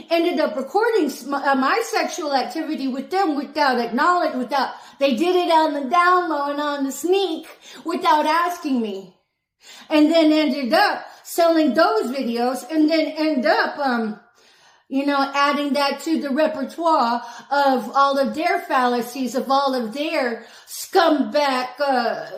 ended up recording my sexual activity with them without they did it on the down low and on the sneak without asking me. And then ended up selling those videos, and then end up, adding that to the repertoire of all of their fallacies, of all of their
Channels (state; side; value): identical; both; correlation 1.00